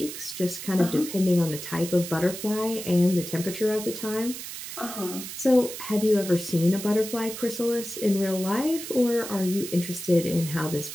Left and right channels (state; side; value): noise; right; hiss, 9 dB below the sound